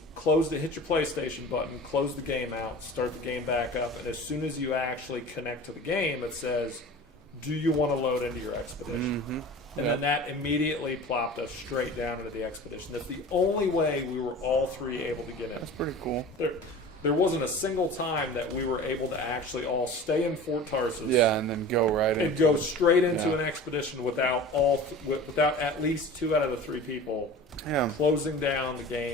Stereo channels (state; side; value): normal; both; correlation 0.38